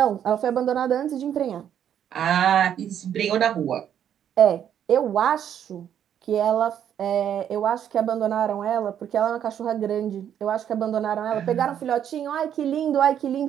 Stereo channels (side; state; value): left; quieter; 9.5 dB